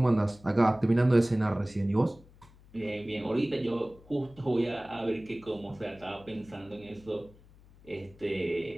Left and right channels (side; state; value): left; noise; hum, 25 dB below the sound